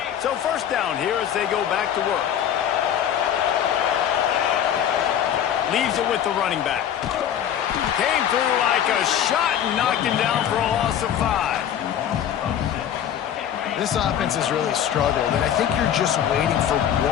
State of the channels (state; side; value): quieter; right; 9.8 dB